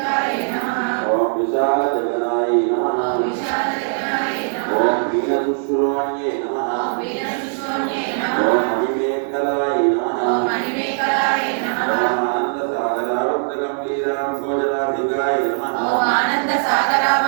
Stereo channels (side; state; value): left; silent; digital silence